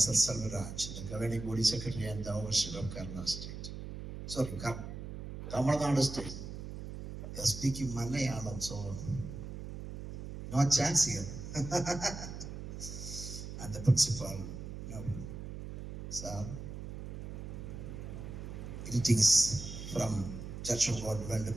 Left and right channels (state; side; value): noise; right; hum, 8 dB below the sound